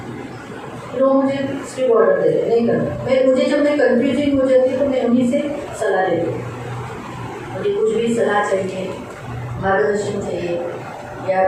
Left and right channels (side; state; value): both; identical; correlation 1.00